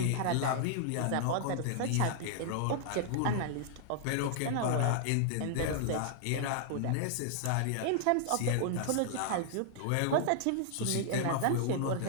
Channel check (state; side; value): different; both; correlation -0.01